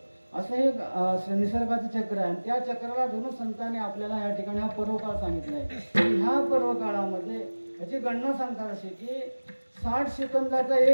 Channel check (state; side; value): inverted; both; correlation -1.00